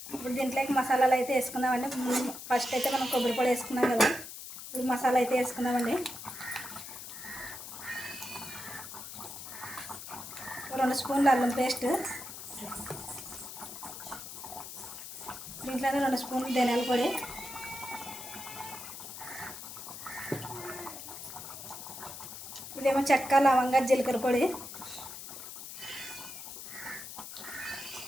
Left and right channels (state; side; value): noise; left; hiss, 11 dB below the sound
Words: ఇప్పుడు దీంట్లోకి మసాలాలు అయితే వేసుకుందామండి. ఫస్ట్ అయితే మనం కొబ్బరి పొడి వేసుకున్నాం కదా, ఇప్పుడు మసాలా అయితే వేసుకుందామండి. 2 స్పూన్లు అల్లం పేస్ట్, దీంట్లోనే 2 స్పూన్లు ధనియాల పొడి, ఇదేమో చెక్క లవంగా జీలకర్ర పొడి,